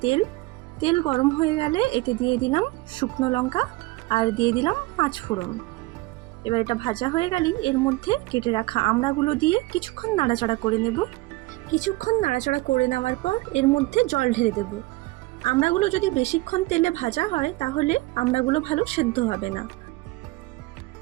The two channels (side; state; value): left; quieter; 20.9 dB